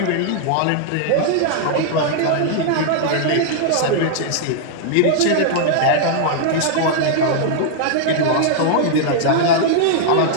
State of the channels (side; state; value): both; different; correlation -0.01